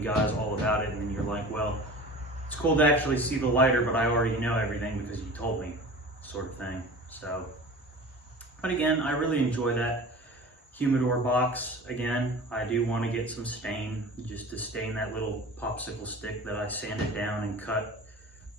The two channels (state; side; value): normal; both; correlation 0.38